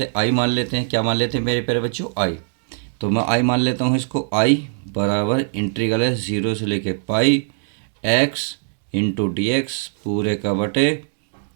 आई मान लेते हैं। क्या मान लेते हैं मेरे प्यारे बच्चों? आई। तो मैं आई मान लेता हूँ इसको। आई बराबर इंटीग्रल है जीरो से लेके pi x into d x पूरे का बटे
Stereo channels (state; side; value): silent; left; digital silence